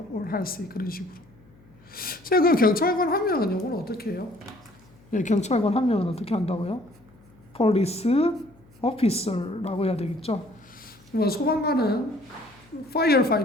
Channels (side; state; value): left; noise; hum, 27 dB below the sound